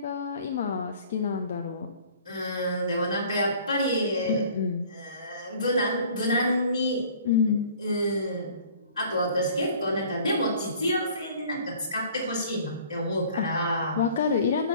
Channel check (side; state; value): both; inverted; correlation -0.51